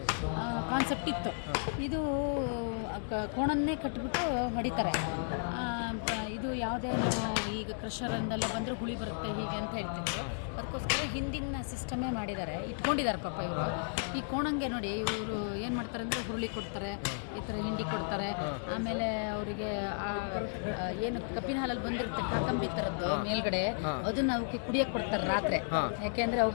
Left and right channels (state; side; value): silent; right; digital silence